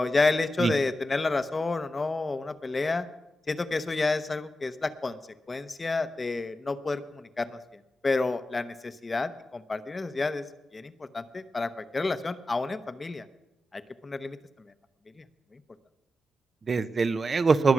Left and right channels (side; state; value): both; normal; correlation 0.91